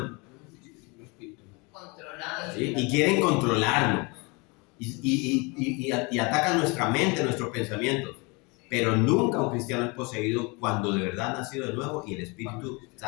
¿Sí? Y quieren controlarnos. Y atacan nuestra mente, nuestros pensamientos. Pero nunca un cristiano es poseído cuando de verdad ha nacido de nuevo y el Espíritu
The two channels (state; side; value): quieter; right; 28.6 dB